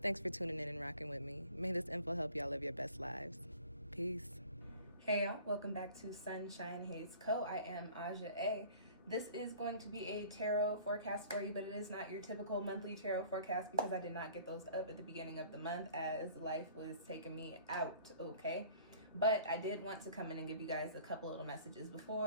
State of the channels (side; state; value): both; inverted; correlation -0.49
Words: thanks for tuning in and rocking with me. May this info help y'all live your best lives. Peace. Hey y'all, welcome back to SunshinehazeCo. I am Aja A. This is going to be a tarot forecast for you, but it is not your typical monthly tarot forecast because I did not get those up at the beginning of the month as life was taking me out, okay? But I did want to come in and give you guys a couple little messages